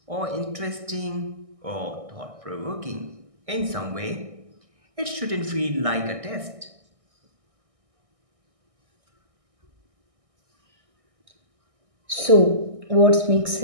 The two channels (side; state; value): left; late; 1.6 ms